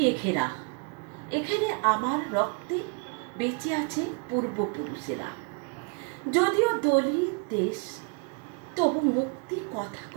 ঘেরা। এখানে আমার রক্তে বেঁচে আছে পূর্বপুরুষেরা। যদিও দলিত দেশ, তবু মুক্তি কথা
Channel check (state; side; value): quieter; left; 33.6 dB